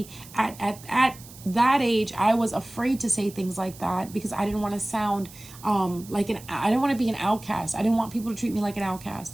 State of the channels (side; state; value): right; noise; hiss, 19 dB below the sound